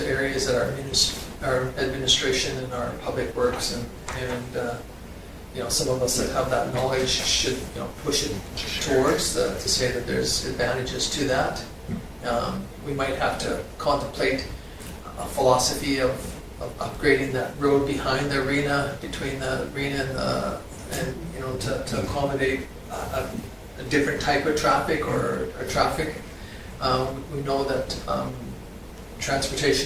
areas that our administration and our public works and some of us that have that knowledge should, push it towards to say that there's advantages to that. We might have to contemplate a philosophy of upgrading that road behind the arena, between the arena and to accommodate a different type of traffic or traffic. We know that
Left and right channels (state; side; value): identical; both; correlation 1.00